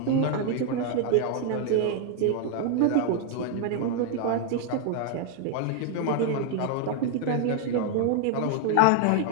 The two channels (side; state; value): both; different; correlation 0.00